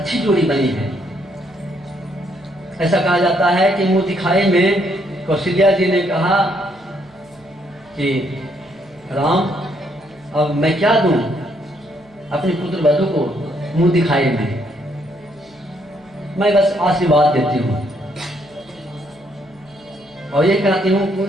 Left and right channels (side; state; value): right; noise; hum, 29 dB below the sound